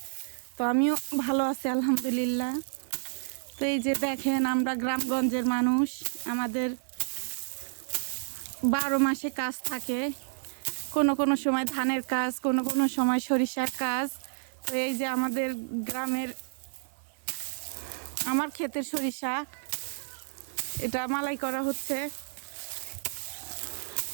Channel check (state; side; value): silent; left; 58 dB below the other